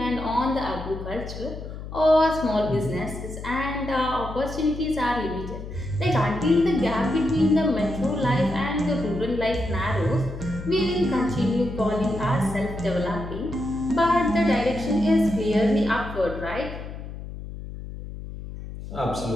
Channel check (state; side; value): noise; left; hum, 10 dB below the sound